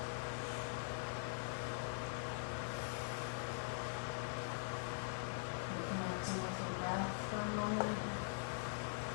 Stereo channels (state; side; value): silent; right; digital silence